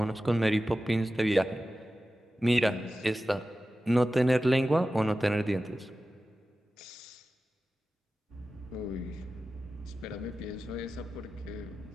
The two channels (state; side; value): normal; both; correlation 0.94